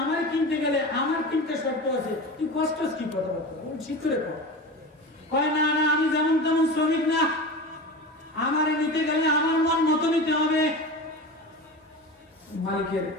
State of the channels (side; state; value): both; normal; correlation 0.29